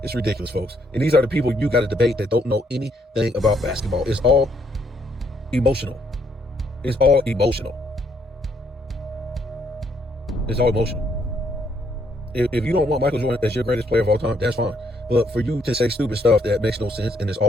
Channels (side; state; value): both; normal; correlation 0.71